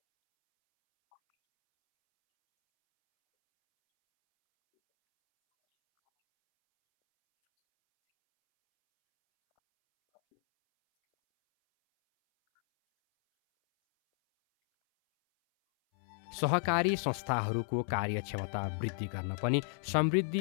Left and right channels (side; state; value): right; silent; 56 dB below the other